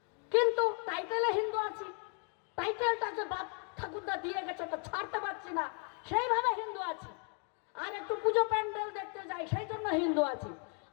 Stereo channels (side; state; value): right; quieter; 39.0 dB